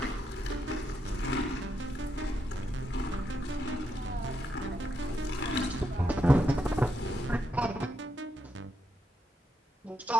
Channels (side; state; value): both; normal; correlation 0.81